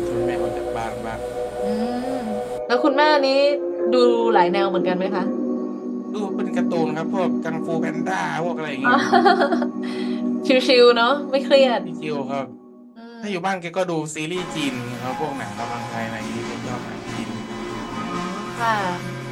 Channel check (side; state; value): both; identical; correlation 1.00